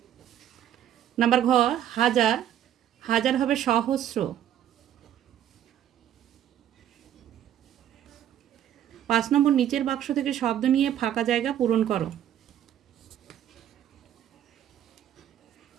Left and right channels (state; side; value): quieter; left; 10.8 dB